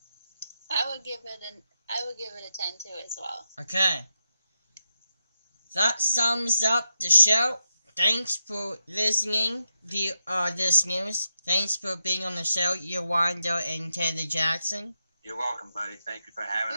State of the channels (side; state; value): both; inverted; correlation -0.86